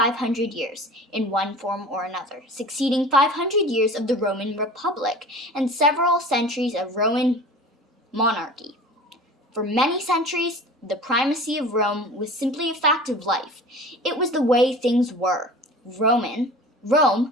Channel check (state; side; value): normal; both; correlation 0.39